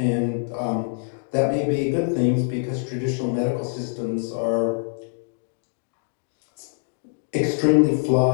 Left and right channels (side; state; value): right; silent; digital silence